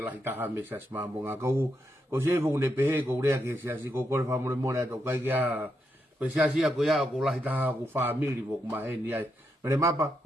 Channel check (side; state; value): both; normal; correlation 0.82